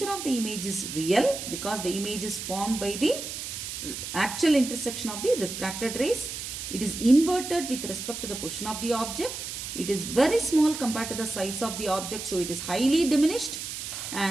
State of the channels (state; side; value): noise; right; hiss, 7 dB below the sound